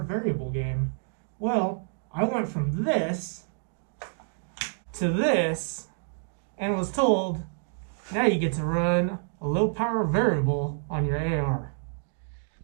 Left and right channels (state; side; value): silent; left; 59 dB below the other